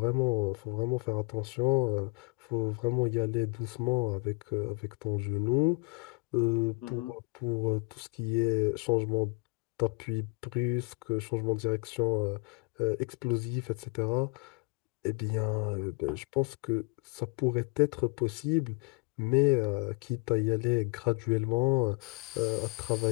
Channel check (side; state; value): right; quieter; 30.8 dB